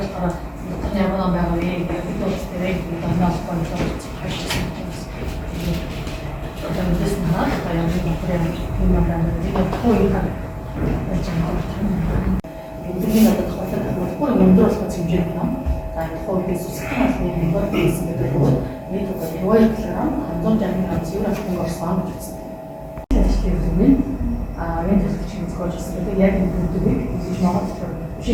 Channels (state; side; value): identical; both; correlation 1.00